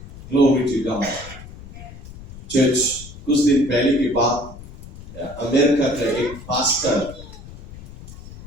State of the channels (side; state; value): left; noise; rumble, 16 dB below the sound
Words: Glory to God. चर्च, कुछ दिन पहले की बात, अमेरिका का एक पास्टर